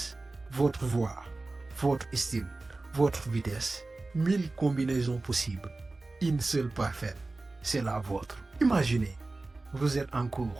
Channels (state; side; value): quieter; left; 3.2 dB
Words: votre voix, votre style, votre vitesse. 1000 combinaisons possibles. Une seule parfaite, c'est la vôtre. Imaginez, vous êtes en